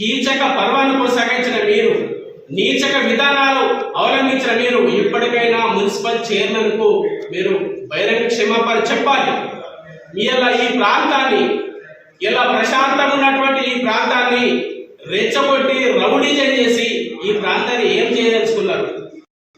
పర్వాన్ని కొనసాగించిన మీరు, నీచక విధానాలు అవలంబించిన మీరు ఇప్పటికైనా మున్సిపల్ చైర్మన్ కు మీరు బహిరంగ క్షమాపణ చెప్పాలి. ఇలా ఈ ప్రాంతాన్ని, ఇలా ప్రశాంతంగా ఉన్నటువంటి ఈ ప్రాంతాన్ని రెచ్చగొట్టి రౌడీజం చేసి ఈ ప్రాంతాన్ని ఏం చేయదలుచుకున్నారు?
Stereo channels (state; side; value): identical; both; correlation 1.00